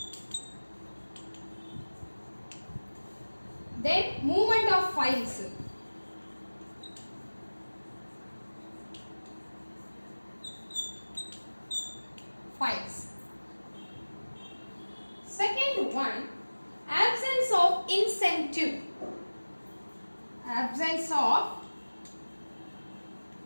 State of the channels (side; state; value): both; inverted; correlation -1.00